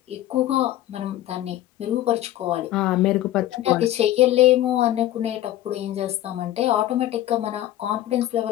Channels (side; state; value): right; quieter; 13.7 dB